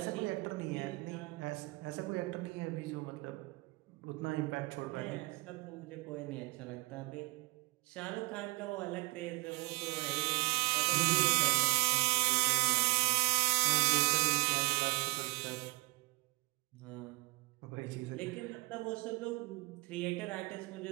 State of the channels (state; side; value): quieter; left; 25.5 dB